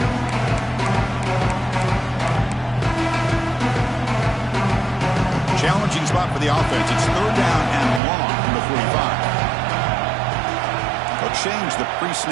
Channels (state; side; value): drops out; left; at 8.0 s